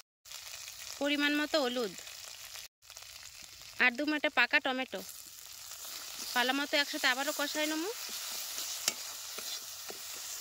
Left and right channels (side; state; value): both; identical; correlation 1.00